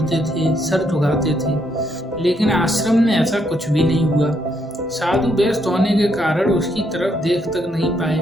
थे, सर झुकाते थे। लेकिन आश्रम में ऐसा कुछ भी नहीं हुआ। साधु व्यस्त होने के कारण उसकी तरफ देख तक नहीं पाए।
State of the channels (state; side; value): normal; both; correlation 0.75